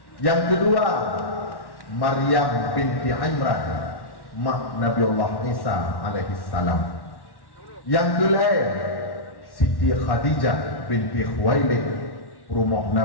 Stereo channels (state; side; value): late; right; 1.1 ms